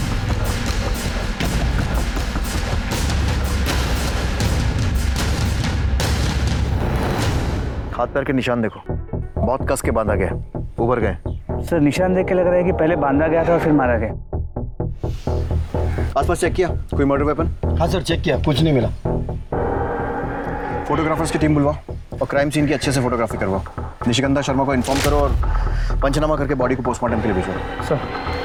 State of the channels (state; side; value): identical; both; correlation 1.00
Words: हाथ पैर के निशान देखो, बहुत कस के बांधा गया, उभर गए। सर निशान देख के लग रहा है कि पहले बांधा गया था और फिर मारा गया। आसपास चेक किया कोई मर्डर वेपन? हाँ सर, चेक किया, कुछ नहीं मिला। फोटोग्राफर्स की टीम बुलवाओ और क्राइम सीन की अच्छे से फोटोग्राफी करवाओ। निशिगंधा शर्मा को इन्फॉर्म करो और पंचनामा करके बॉडी को पोस्टमार्टम के लिए भेजो। सर।